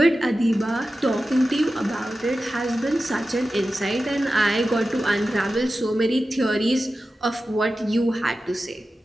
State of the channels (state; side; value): normal; both; correlation 0.93